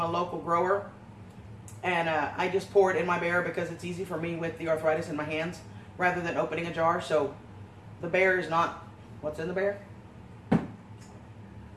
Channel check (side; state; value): both; identical; correlation 1.00